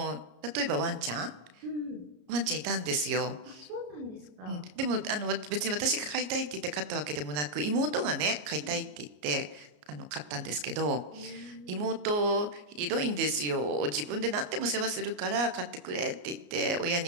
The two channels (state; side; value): late; left; 33 ms